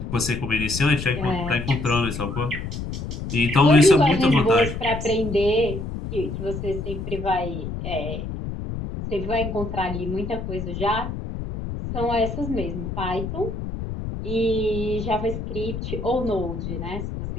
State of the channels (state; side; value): noise; left; rumble, 6 dB below the sound